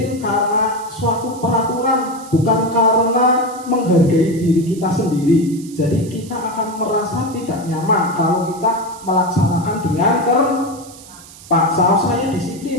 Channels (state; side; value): noise; right; hiss, 19 dB below the sound